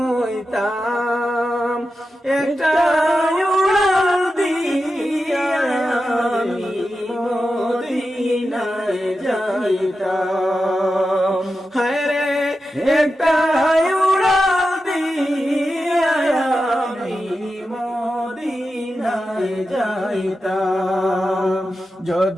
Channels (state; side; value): normal; both; correlation 0.91